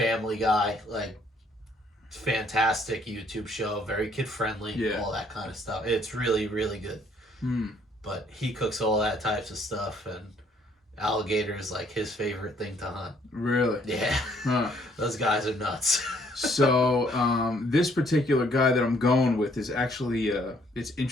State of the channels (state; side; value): normal; both; correlation 0.65